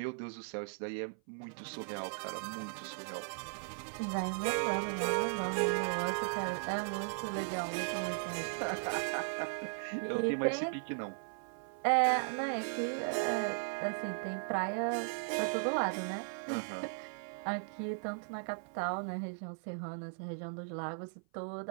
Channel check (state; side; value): silent; left; 53 dB below the other